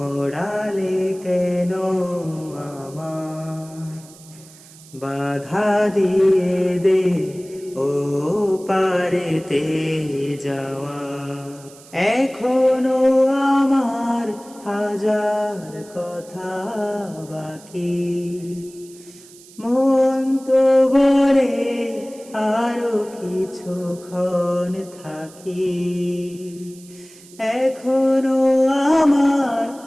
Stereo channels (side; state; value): right; noise; hiss, 22 dB below the sound